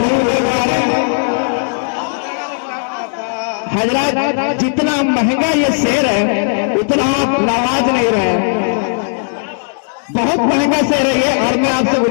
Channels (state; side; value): silent; right; digital silence